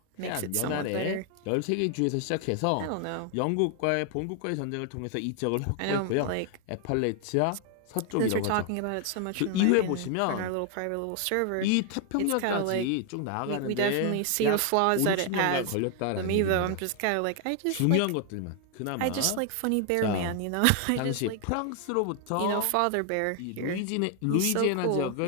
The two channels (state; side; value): different; both; correlation 0.00